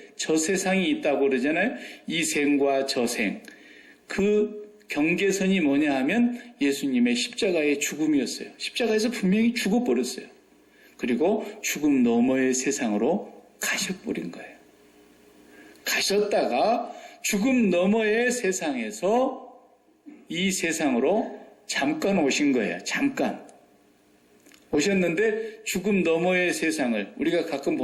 저 세상이 있다고 그러잖아요. 이 생과 저 생. 그 경계선이 뭐냐 하면 예수님의 십자가의 죽음이었어요. 십자가에서 분명히 죽어버렸어요. 그리고 죽음 너머의 세상으로 가셔버린 거예요. 가셨다가 죽음 너머의 세상에서 이 세상으로 잠깐 오신 거예요. 잠깐. 오셨는데 죽음 너머의 세상을 우리가 가끔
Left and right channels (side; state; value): both; identical; correlation 1.00